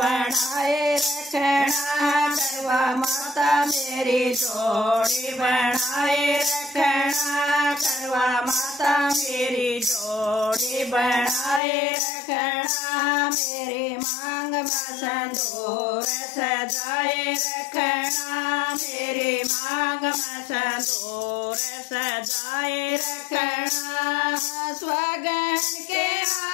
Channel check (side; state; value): right; drops out; at 11.6 s